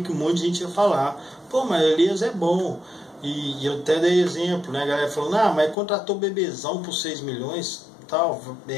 um monte de gente ia falar: pô, mas o Elias é bom. E eu até dei exemplo, né? A galera falando: ah, mas contratou o Bebezão por 6 milhões, tal,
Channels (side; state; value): right; drops out; at 5.8 s